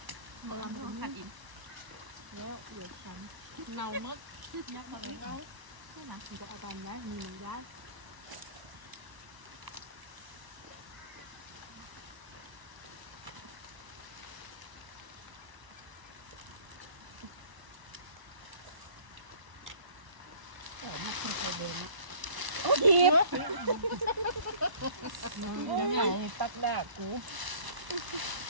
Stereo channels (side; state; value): left; late; 1.0 ms